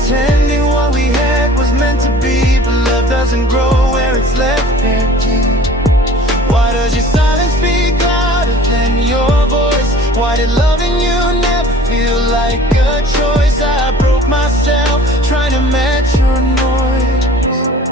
what we had was meant to be, but love doesn't grow where it's left empty. Why does your silence speak louder than your voice? Why did loving you never feel like a choice? I broke myself trying to match your noise.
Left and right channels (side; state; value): both; normal; correlation 0.47